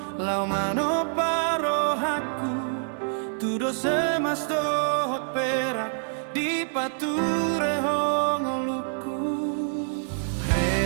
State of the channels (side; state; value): left; silent; 61 dB below the other